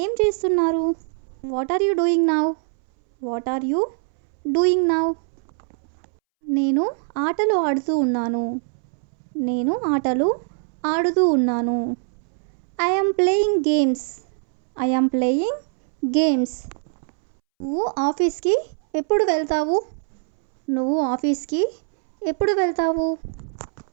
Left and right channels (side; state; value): left; silent; 64 dB below the other